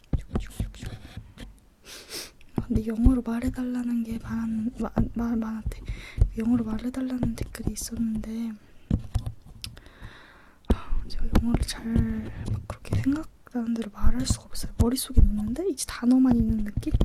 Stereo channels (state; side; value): identical; both; correlation 1.00